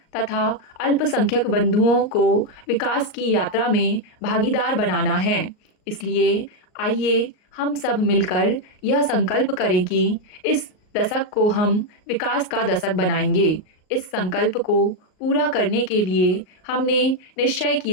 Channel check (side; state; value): right; late; 38 ms